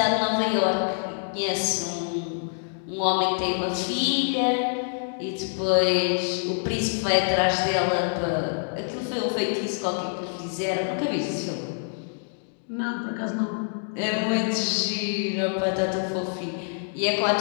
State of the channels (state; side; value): silent; right; digital silence